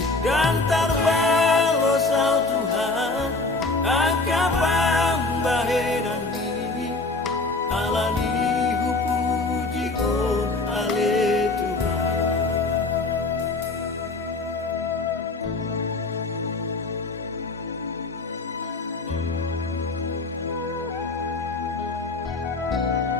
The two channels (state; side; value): quieter; right; 3.4 dB